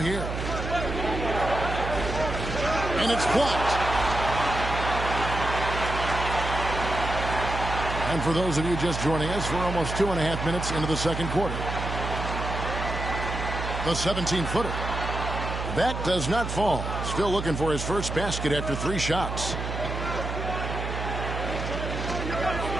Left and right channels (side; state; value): right; noise; hum, 4 dB below the sound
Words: And it's blocked. And for those of you just joining us, we're almost 2.5 minutes into the second quarter. The 17-footer. That does not fall. Still looking for his first basket after 3 shots.